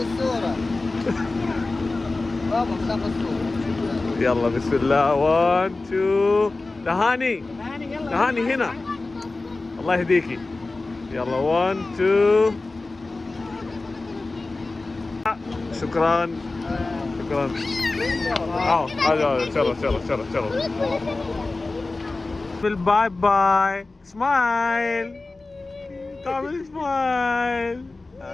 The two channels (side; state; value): right; quieter; 3.3 dB